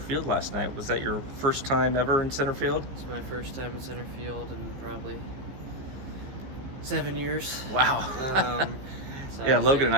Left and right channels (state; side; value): late; left; 15 ms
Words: last night. Was that your first time ever in center field? It's my first time in center field in probably 7 years. Wow. So yeah, Logan and